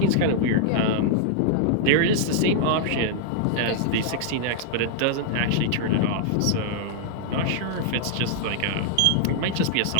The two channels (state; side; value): different; both; correlation -0.01